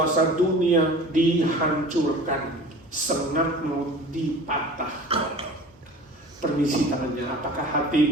dunia dihancurkan, sengat maut dipatahkan. Permisi tangannya, apakah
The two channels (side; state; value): both; normal; correlation 0.41